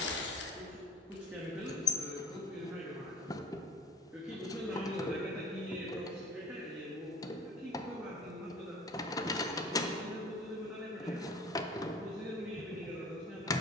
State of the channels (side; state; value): both; normal; correlation 0.47